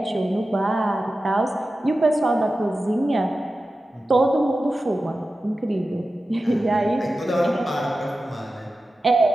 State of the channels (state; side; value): normal; both; correlation 0.93